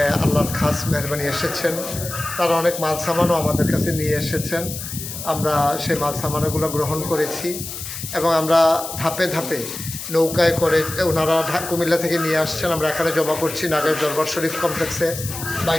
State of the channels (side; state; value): left; noise; hiss, 8 dB below the sound